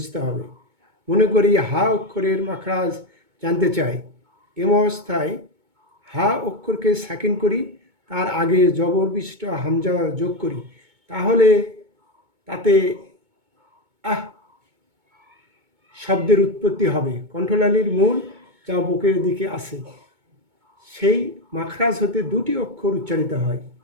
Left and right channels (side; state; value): left; late; 2.2 ms